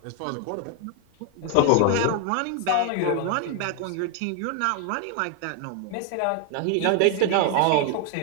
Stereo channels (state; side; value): different; both; correlation 0.00